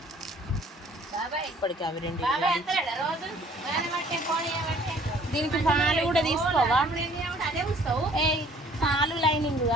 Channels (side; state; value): both; normal; correlation 0.57